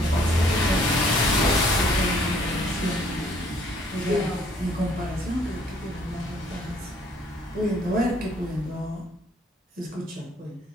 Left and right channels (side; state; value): both; normal; correlation 0.61